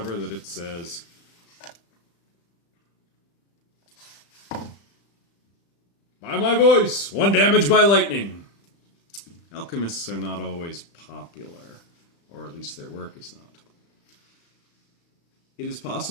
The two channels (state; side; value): late; right; 35 ms